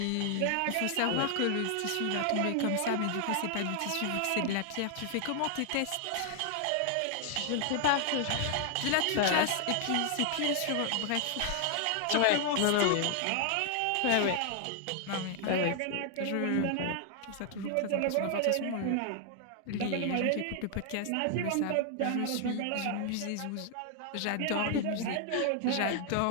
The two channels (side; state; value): both; different; correlation 0.00